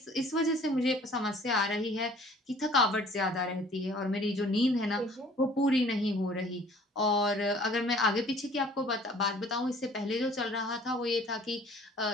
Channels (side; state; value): both; normal; correlation 0.53